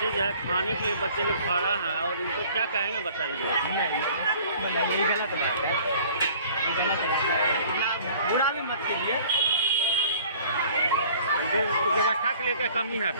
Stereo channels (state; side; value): inverted; both; correlation -0.51